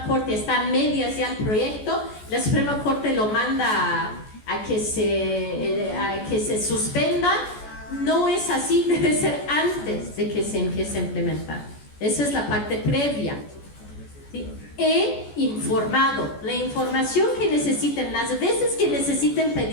Corte, está a medias ya el proyecto, la Suprema Corte lo manda a que se suspenda. No es así, debe ser antes de que se empiece a implementar. Esa es la parte previa. ¿Sí? He informado, la información que necesiten, las veces que necesiten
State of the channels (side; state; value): right; late; 14 ms